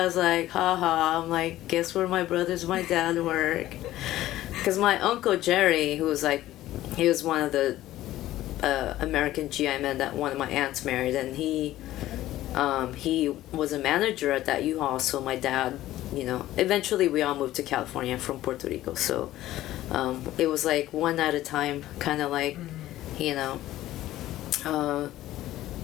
was like, haha. I'm like, guess where my brothers, my dad work. Because my uncle Jerry, who was like, he was one of the American GI men that one of my aunts married, and he was a manager at that U-Haul. So my dad, you know, eventually we all moved to California from Puerto Rico. So it was like one at a time, kind of like, you know.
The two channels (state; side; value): quieter; right; 14.7 dB